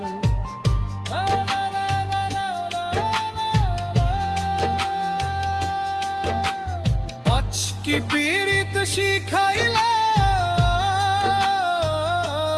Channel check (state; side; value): identical; both; correlation 1.00